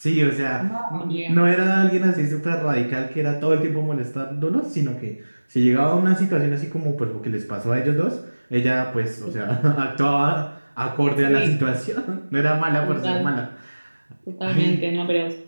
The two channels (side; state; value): both; inverted; correlation -1.00